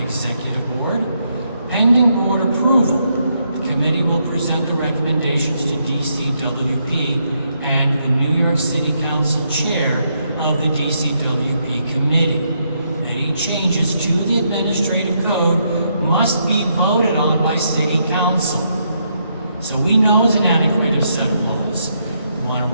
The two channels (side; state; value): both; inverted; correlation -0.77